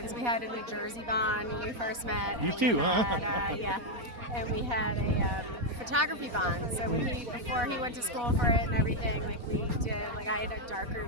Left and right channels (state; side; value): late; left; 4.1 ms